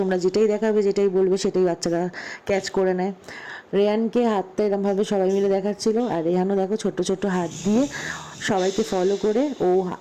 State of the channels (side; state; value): both; identical; correlation 1.00